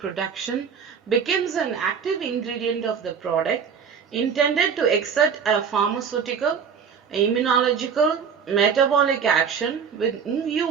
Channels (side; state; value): left; quieter; 6.7 dB